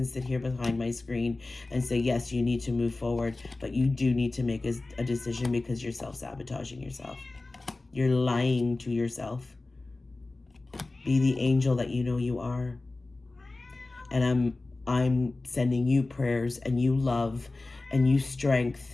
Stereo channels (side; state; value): right; quieter; 3.2 dB